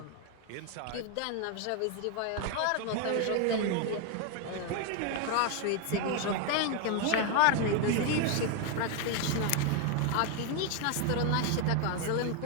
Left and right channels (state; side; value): different; both; correlation 0.01